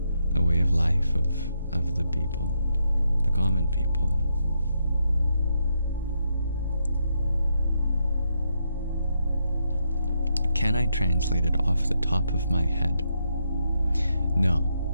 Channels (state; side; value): inverted; both; correlation -0.80